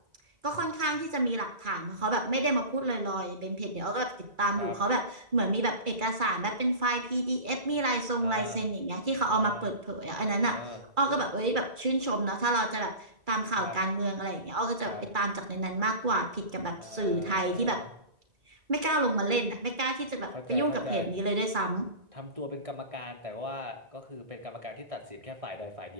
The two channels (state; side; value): late; left; 2.3 ms